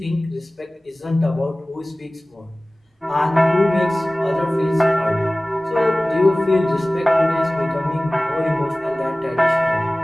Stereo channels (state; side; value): normal; both; correlation 0.98